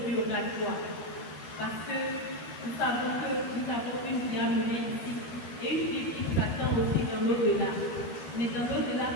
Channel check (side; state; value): right; late; 13 ms